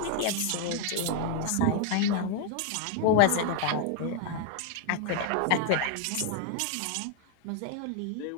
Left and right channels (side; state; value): both; different; correlation 0.01